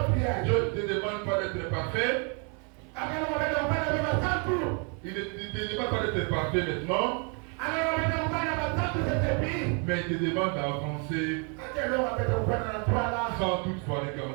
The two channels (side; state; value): left; quieter; 36.9 dB